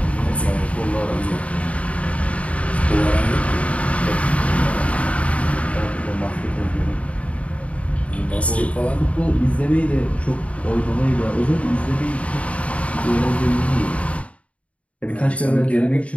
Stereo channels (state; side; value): late; right; 0.065 ms